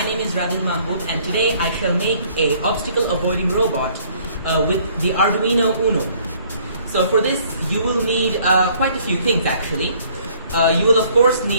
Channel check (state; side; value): inverted; both; correlation -0.60